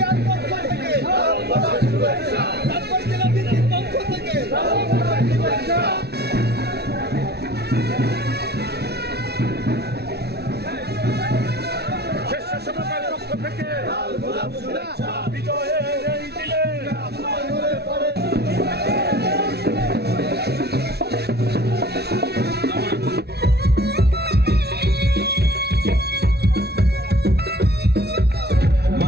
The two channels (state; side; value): late; left; 0.48 ms